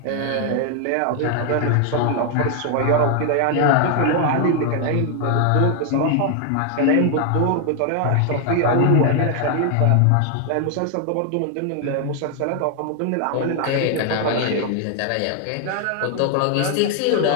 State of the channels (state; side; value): different; both; correlation 0.00